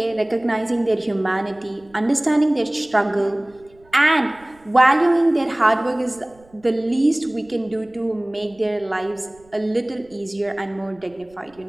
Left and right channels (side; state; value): right; noise; rumble, 29 dB below the sound